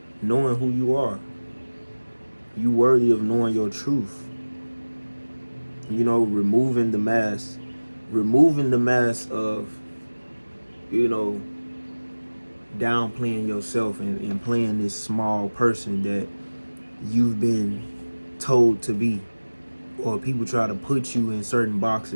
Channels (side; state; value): both; inverted; correlation -1.00